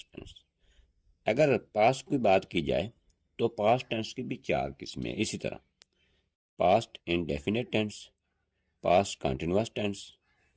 tense. अगर पास्ट की बात की जाए तो पास्ट टेंस की भी 4 किस्में हैं। इसी तरह past indefinite tense, past continuous tense,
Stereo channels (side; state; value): both; identical; correlation 1.00